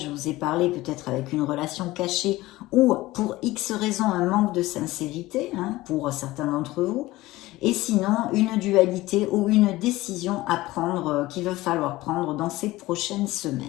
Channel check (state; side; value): quieter; right; 18.3 dB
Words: vous ai parlé peut-être avec une relation cachée, ou pour X raisons un manque de sincérité, hein, pour certains d'entre vous, et sinon une dualité ou une décision à prendre qu'il va falloir prendre dans ces prochaines